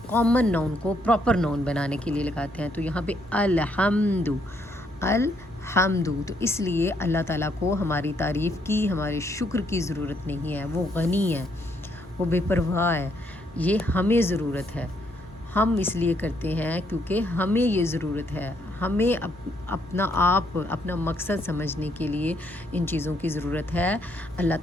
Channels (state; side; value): normal; both; correlation 0.72